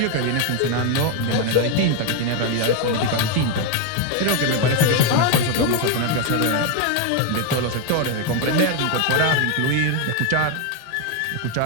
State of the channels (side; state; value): both; different; correlation 0.01